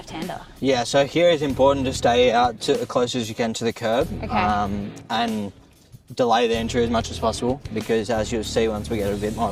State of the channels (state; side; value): identical; both; correlation 1.00